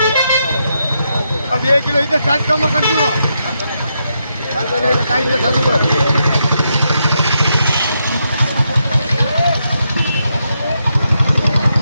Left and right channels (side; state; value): both; inverted; correlation -0.82